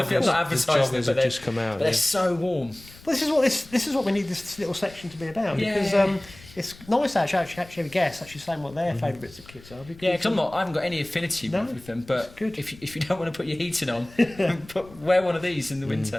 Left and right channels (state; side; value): noise; left; rumble, 21 dB below the sound